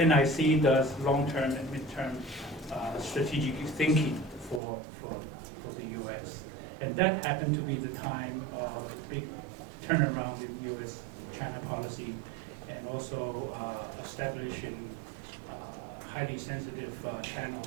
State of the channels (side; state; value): left; drops out; at 4.6 s